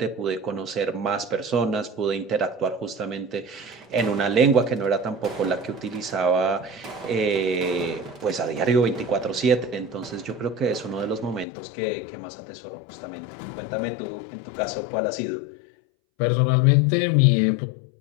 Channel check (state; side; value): drops out; right; at 11.5 s